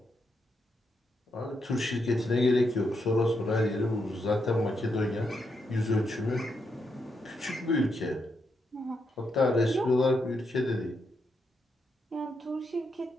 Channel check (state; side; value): normal; both; correlation 0.81